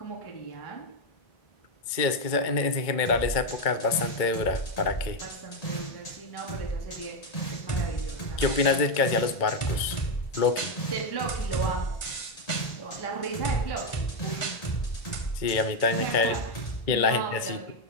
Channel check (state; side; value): late; right; 2.2 ms